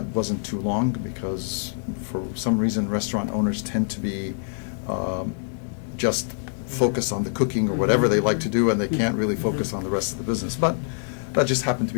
wasn't too long because for some reason restaurant owners tend to be just focused on the cooking or whatever they like to do, and they can't really focus on the rest of the business. But that just happened to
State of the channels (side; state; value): right; silent; 62 dB below the other